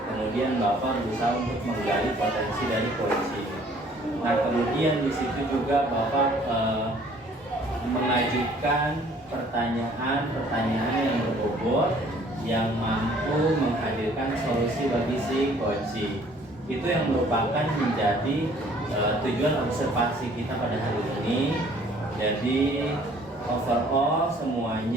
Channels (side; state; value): both; normal; correlation 0.57